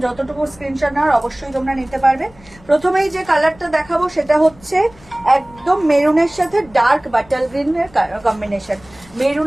যতটুকু স্ক্রিনশট নেওয়ার অবশ্যই তোমরা নিতে পারবে। প্রথমেই যে কালারটা দেখাবো সেটা হচ্ছে একদম মেরুনের সাথে ডার্ক বাটাল গ্রিনের কম্বিনেশন।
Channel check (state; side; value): noise; left; rumble, 25 dB below the sound